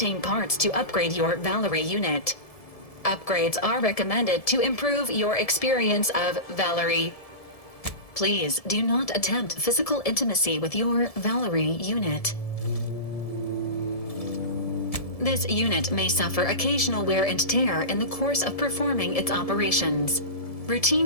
parts to upgrade your Valerie unit. Upgrades are recommended to improve your experience of Valerie. Please do not attempt physical intimacy with your Valerie unit. This unit may suffer occasional wear and tear in the course of performing its operations.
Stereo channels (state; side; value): late; right; 1.7 ms